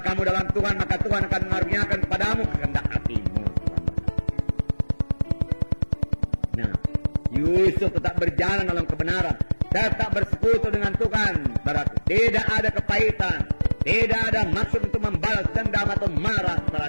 kamu dalam Tuhan, maka Tuhan akan mengaruniakan kepadamu kehendak hatimu. Nah, Yusuf tetap berjalan dalam kebenaran, tetap bersekutu dengan Tuhan. Berarti tidak ada kepahitan, tidak ada maksud untuk membalas dendam atau marah.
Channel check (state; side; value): inverted; both; correlation -1.00